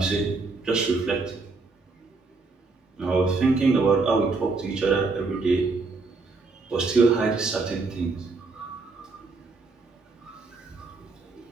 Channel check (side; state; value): left; quieter; 3.9 dB